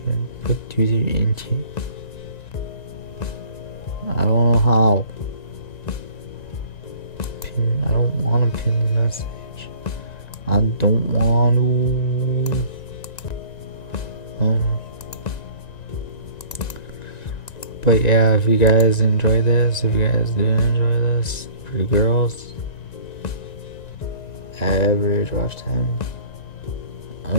put user into. I don't know how. I don't want to pin the message. I don't want to. But yeah, if you guys enjoy this, if you guys didn't enjoy this, for you girls, average watch time.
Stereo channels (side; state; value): right; late; 1.9 ms